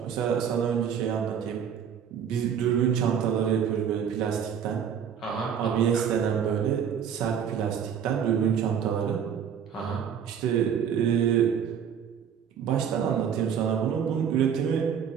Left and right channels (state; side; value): quieter; left; 8.0 dB